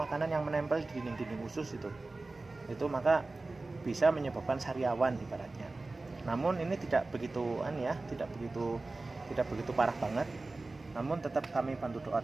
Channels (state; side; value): quieter; left; 3.3 dB